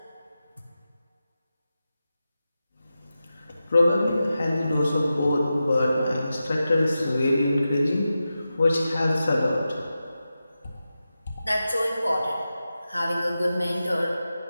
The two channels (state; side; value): inverted; both; correlation -0.92